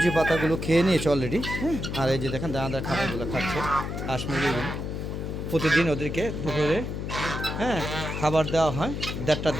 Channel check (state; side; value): noise; left; hum, 4 dB below the sound